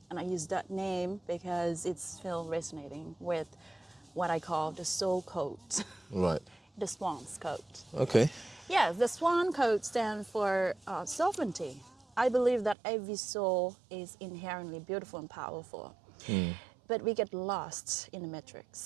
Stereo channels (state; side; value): drops out; left; at 12.8 s